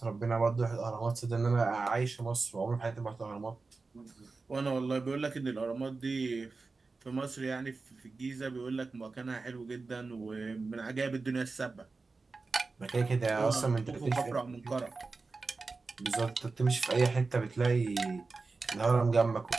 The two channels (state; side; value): quieter; left; 4.0 dB